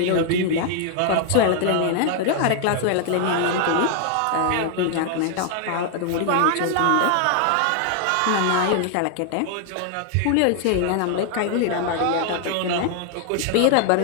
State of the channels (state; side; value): different; both; correlation 0.00